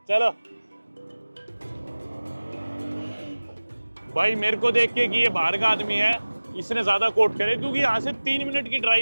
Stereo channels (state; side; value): inverted; both; correlation -1.00